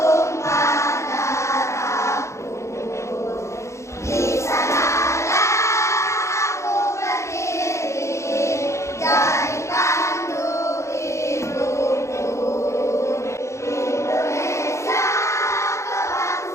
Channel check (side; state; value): right; late; 0.14 ms